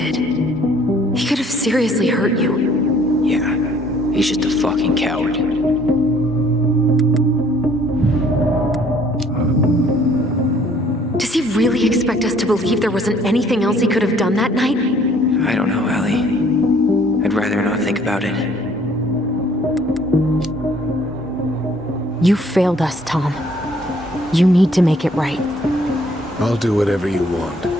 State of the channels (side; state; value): both; normal; correlation 0.59